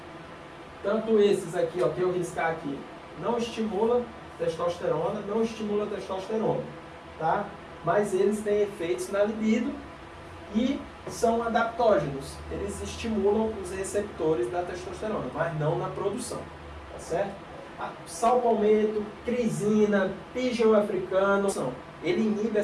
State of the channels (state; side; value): identical; both; correlation 1.00